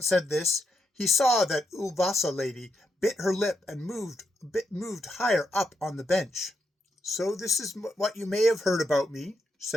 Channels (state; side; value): normal; both; correlation 0.81